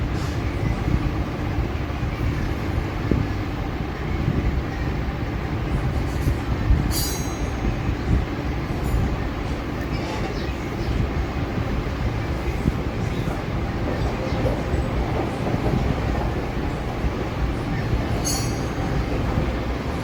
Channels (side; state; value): both; identical; correlation 1.00